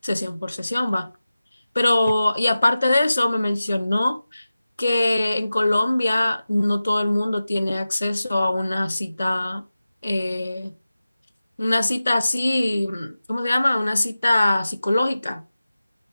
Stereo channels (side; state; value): both; inverted; correlation -0.95